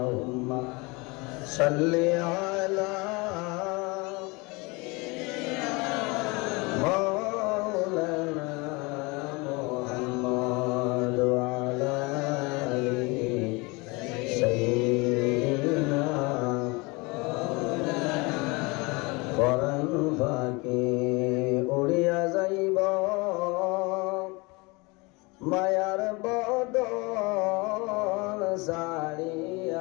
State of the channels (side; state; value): right; quieter; 26.4 dB